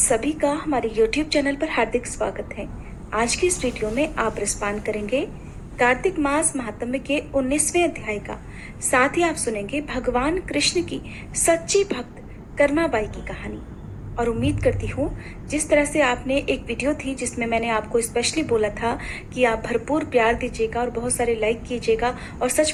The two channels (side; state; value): both; identical; correlation 1.00